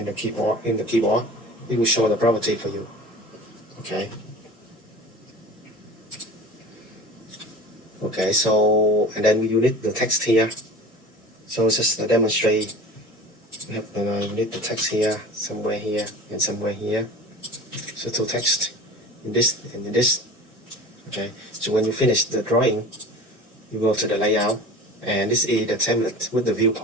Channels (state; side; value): normal; both; correlation 0.38